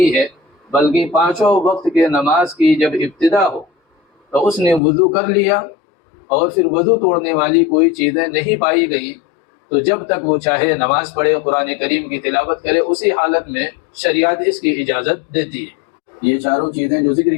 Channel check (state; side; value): drops out; right; at 4.8 s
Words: ہے، بلکہ 5 وقت کے نماز کی جب ابتدا ہو تو اس نے وضو کر لیا اور پھر وضو توڑنے والی کوئی چیزیں نہیں پائی گئیں تو جب تک وہ چاہے نماز پڑھے، قرآن کریم کی تلاوت کرے، اسی حالت میں شریعت اس کی اجازت دیتی ہے۔ یہ چاروں چیزیں جو ذکر